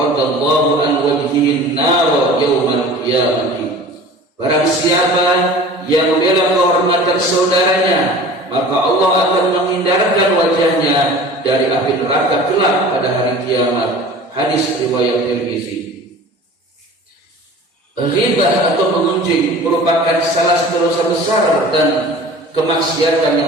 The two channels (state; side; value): normal; both; correlation 0.42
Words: an wajhihi nar yaumal qiyamah." Barang siapa yang membela kehormatan saudaranya, maka Allah akan menghindarkan wajahnya dari api neraka kelak pada hari kiamat. Hadis riwayat Tirmizi. Riba atau mengunjing merupakan salah satu dosa besar dan kemaksiatan